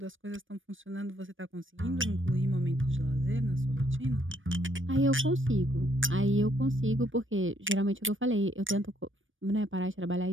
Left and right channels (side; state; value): left; late; 0.57 ms